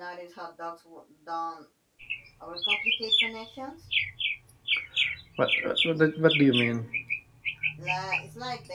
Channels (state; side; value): identical; both; correlation 1.00